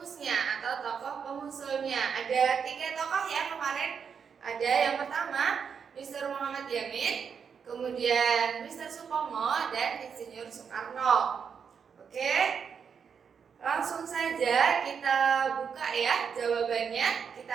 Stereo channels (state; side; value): quieter; left; 6.7 dB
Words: atau tokoh pengusulnya. Ada 3 tokoh ya kemarin. Ada yang pertama Mr. Muhammad Yamin, kemudian Mr. Supomo, dan Insinyur Soekarno. Oke, langsung saja kita buka ya jawabannya.